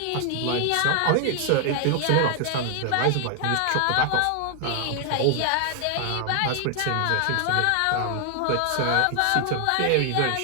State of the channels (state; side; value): different; both; correlation 0.00